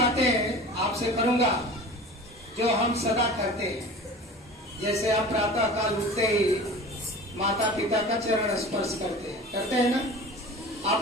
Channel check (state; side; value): normal; both; correlation 0.38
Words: आपसे करूंगा जो हम सदा करते हैं। जैसे आप प्रातः काल उठते ही माता पिता का चरण स्पर्श करते हैं ना।